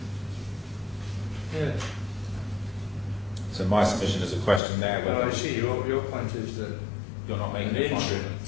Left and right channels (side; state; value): right; drops out; at 4.6 s